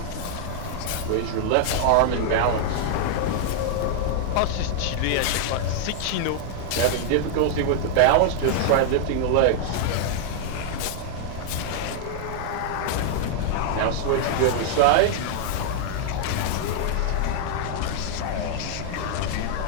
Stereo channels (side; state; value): both; different; correlation 0.00